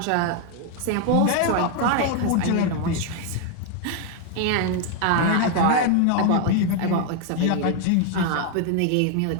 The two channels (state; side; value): different; both; correlation 0.00